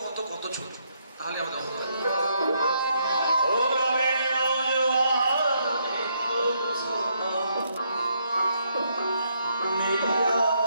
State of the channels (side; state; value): both; inverted; correlation -0.75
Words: কত কত ছোট। তাহলে আমাদের